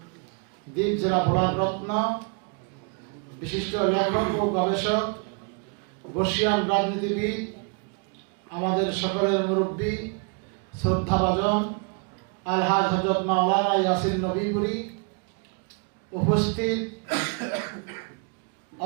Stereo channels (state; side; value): quieter; left; 36.7 dB